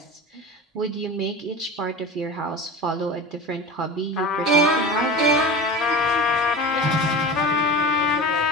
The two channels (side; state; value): both; normal; correlation 0.31